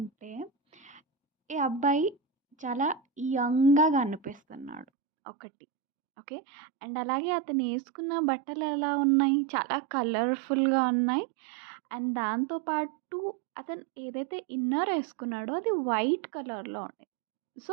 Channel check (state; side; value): drops out; left; at 4.9 s